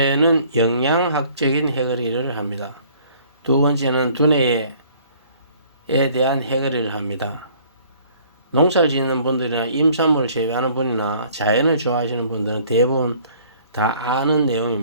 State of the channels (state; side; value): inverted; both; correlation -0.56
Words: 영양학적인 해거리를 합니다. 두 번째는 두뇌에 대한 해거리를 합니다. 농사를 짓는 분들이나 임산물을 재배하는 분이나 자연을 좋아하시는 분들은 대부분 다 아는